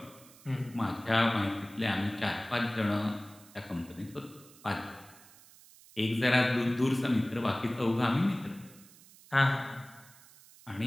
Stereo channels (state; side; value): noise; right; hiss, 23 dB below the sound